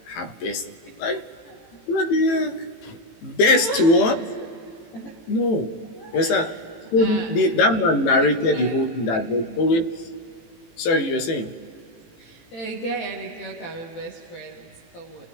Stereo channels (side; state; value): right; late; 18 ms